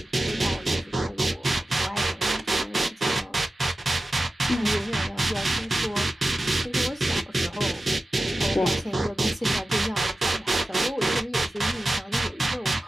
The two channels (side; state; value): both; normal; correlation 0.94